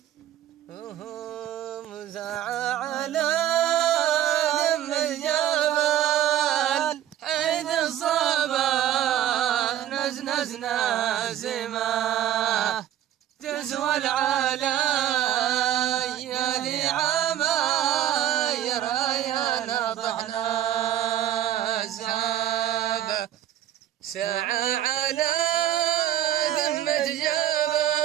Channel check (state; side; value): quieter; left; 11.9 dB